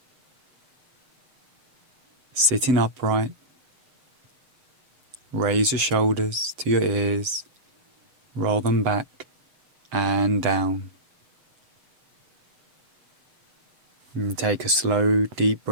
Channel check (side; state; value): left; late; 7.6 ms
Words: Sitting upright, raise your shoulders to your ears, roll them back and down. And take a slow, deep